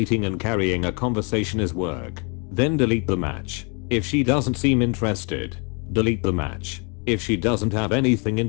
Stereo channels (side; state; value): right; quieter; 34.6 dB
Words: and carrying a conversation as work, then delete the match. If she doesn't seem interested, delete the match. If she doesn't have anything